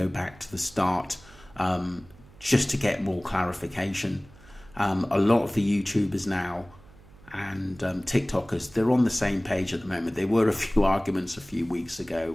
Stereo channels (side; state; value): right; noise; hum, 24 dB below the sound